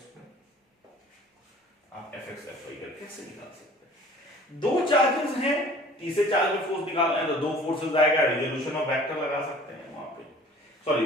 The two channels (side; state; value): both; normal; correlation 0.48